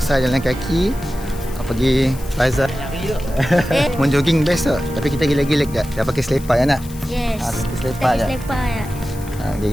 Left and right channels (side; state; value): left; noise; hiss, 18 dB below the sound